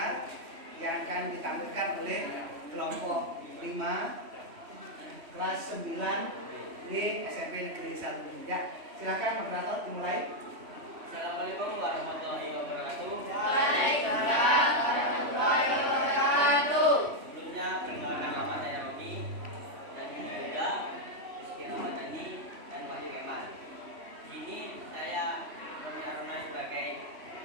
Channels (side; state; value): left; late; 3.1 ms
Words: yang akan ditampilkan oleh kelompok 5 kelas 9 di SMP Negeri 1. Ya, silakan moderator dimulai. Assalamualaikum warahmatullahi wabarakatuh. Waalaikumsalam warahmatullahi wabarakatuh. Sebelumnya perkenalkan nama saya Roni dan ini Yuda, Rizky Ramadhani dan Wahyu Kemal. Di sini saya Roni Aruna sebagai